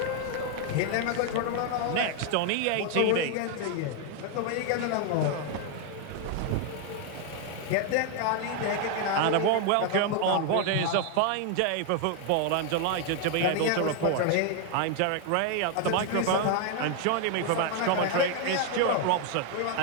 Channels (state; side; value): different; both; correlation 0.00